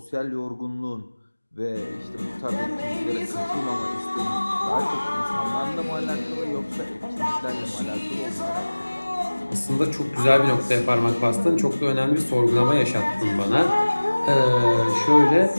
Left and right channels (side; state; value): both; inverted; correlation -1.00